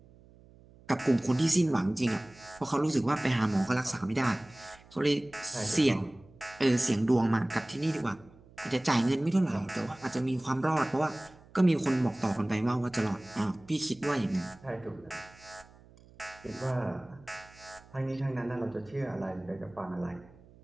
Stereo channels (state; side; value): noise; right; hum, 25 dB below the sound